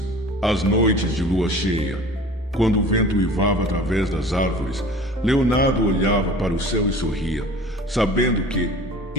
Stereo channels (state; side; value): normal; both; correlation 0.43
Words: Às noites de lua cheia, quando o vento uivava através das árvores, Leonardo olhava para o céu e sorria, sabendo que,